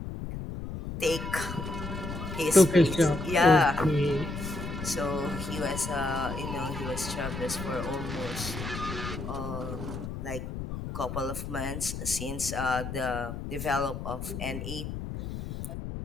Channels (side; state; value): left; noise; rumble, 6 dB below the sound